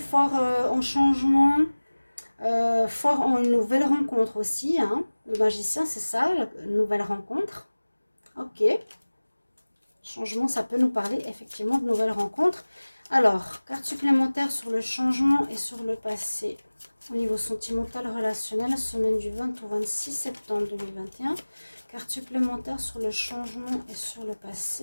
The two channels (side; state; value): both; inverted; correlation -1.00